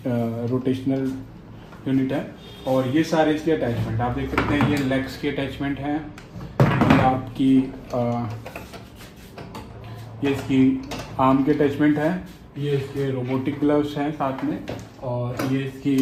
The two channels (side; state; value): both; identical; correlation 1.00